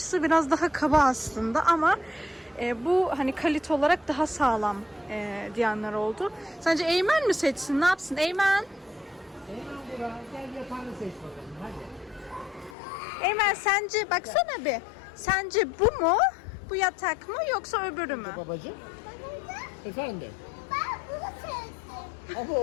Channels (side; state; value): right; drops out; at 12.8 s